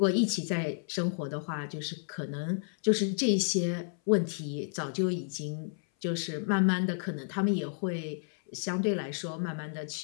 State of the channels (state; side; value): silent; right; 57 dB below the other